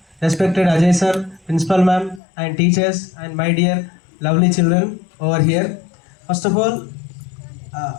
respected Ajay sir, principal ma'am and teachers and my dear lovely children over here. First of all,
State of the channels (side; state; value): right; drops out; at 2.2 s